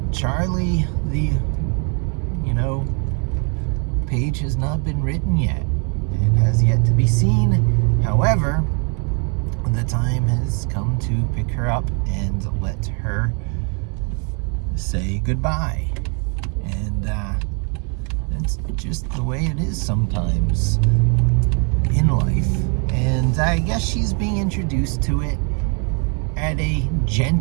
Charlie, the page has not been written yet. It has yet to be seen. However, the time has come to pick her up and let her say goodbye. And it's just the way it is sometimes in life. And I guess she's being introduced to it at a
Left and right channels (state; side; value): quieter; left; 38.2 dB